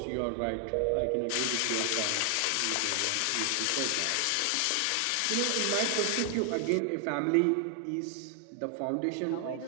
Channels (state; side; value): different; both; correlation 0.00